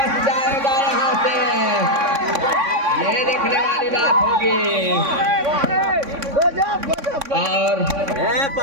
जाएगा यहाँ से, ये देखने वाली बात होगी। और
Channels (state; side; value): late; left; 3.6 ms